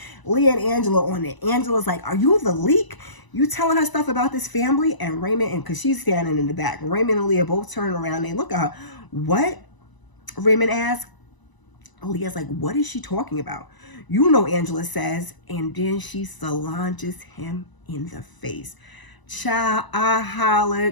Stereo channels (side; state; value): right; late; 1.0 ms